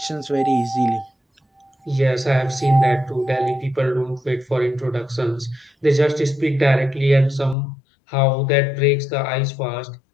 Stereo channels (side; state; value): right; drops out; at 7.6 s